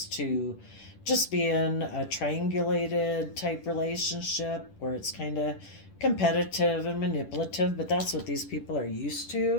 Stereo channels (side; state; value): right; late; 10 ms